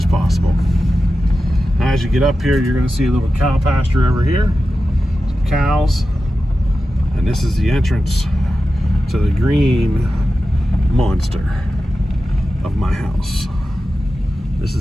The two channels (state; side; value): normal; both; correlation 0.92